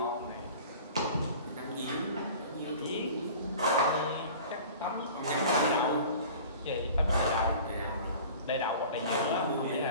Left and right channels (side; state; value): both; inverted; correlation -0.42